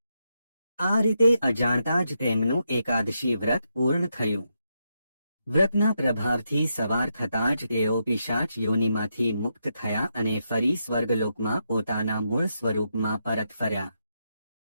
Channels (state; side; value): inverted; both; correlation -0.82